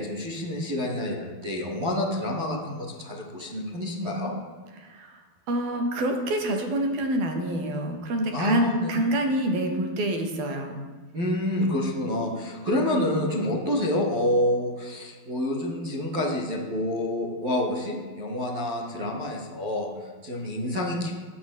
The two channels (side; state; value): left; late; 12 ms